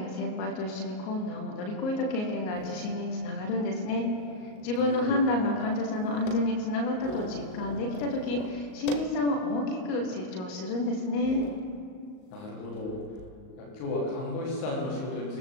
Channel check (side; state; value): right; late; 38 ms